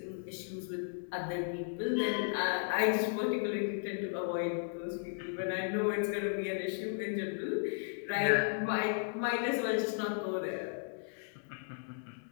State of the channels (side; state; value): right; silent; digital silence